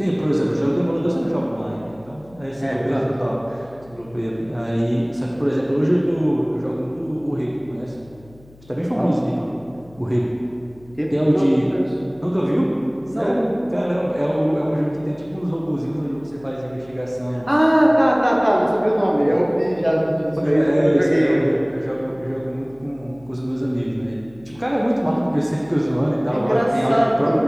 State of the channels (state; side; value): noise; left; hum, 25 dB below the sound